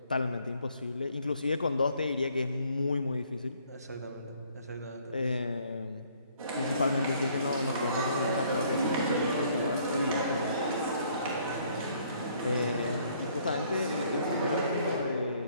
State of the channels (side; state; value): both; inverted; correlation -0.63